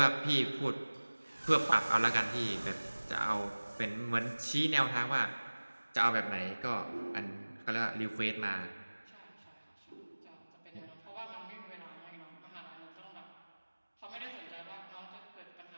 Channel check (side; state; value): both; inverted; correlation -1.00